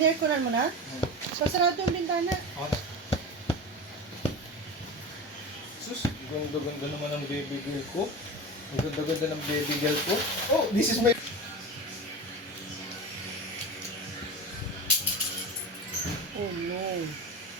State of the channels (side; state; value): both; normal; correlation 0.27